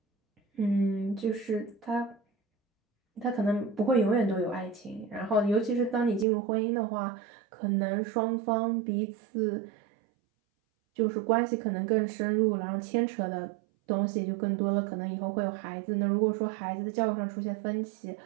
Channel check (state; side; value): drops out; left; at 6.2 s